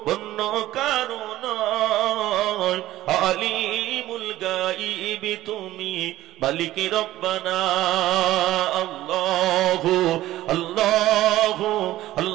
অন্য কারণ আলিমুল গাইব তুমি মালিক রব্বানা আল্লাহু আল্লাহু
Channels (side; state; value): left; quieter; 15.1 dB